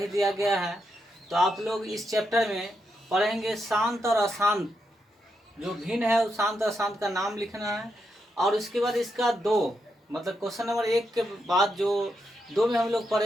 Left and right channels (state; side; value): normal; both; correlation 0.83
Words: दिया गया है, तो आप लोग इस चैप्टर में पढ़ेंगे शांत और अशांत। जो भिन्न है उस शांत और अशांत का नाम लिखना है, और उसके बाद इसका दो मतलब क्वेश्चन नंबर 1 के बाद जो 2 में हम लोग